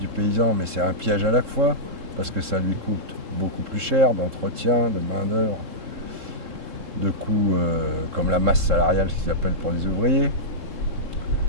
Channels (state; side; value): late; left; 3.7 ms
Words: paysan, mais c'est un piège à la fois, parce que ça lui coûte beaucoup plus cher d'entretien, de main-d'œuvre, de coûts comme la masse salariale, ce qu'ils appellent pour les ouvriers.